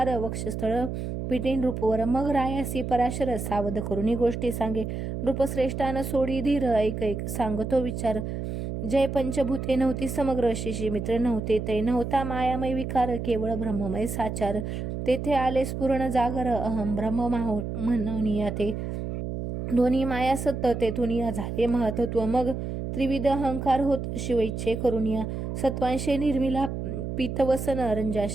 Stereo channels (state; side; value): noise; right; hum, 4 dB below the sound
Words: वक्षस्थळ पिटी नृपवर मग रायासी पराशर सावध करुणी गोष्टी सांगे नृपश्रेष्ठान सोडी धीर ऐक सांगतो विचार जय पंचभूते नव्हती समग्र शिशी मित्र नव्हते ते नव्हता मायामय विकार केवळ ब्रह्ममय साचार तेथे आले स्फुरण जागर अहम ब्रह्म म्हणूनिया ते दोन्ही माया सत्य तेथून या झाले महत्त्व मग त्रिविध अहंकार होत शिवइच्छे करुनिया सत्वांशे निर्मिला पीतवसन